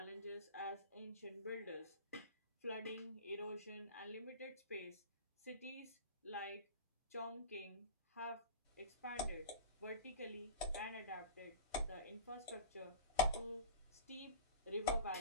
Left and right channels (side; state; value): both; inverted; correlation -0.34